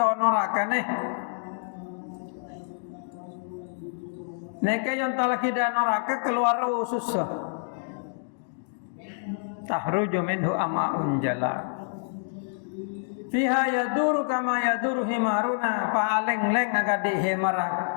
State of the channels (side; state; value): right; silent; digital silence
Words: neraka nih. Neka yang telah kita neraka keluar susah. Tahruju minhu ama'un jala. Fiha yaduru kama yaduru himaruna paaleng-leng agak di himara.